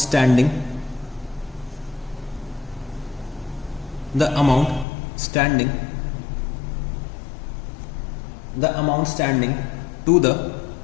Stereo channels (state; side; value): drops out; right; at 4.9 s